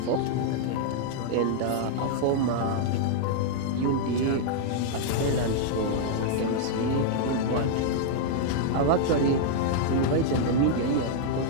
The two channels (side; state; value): both; different; correlation -0.01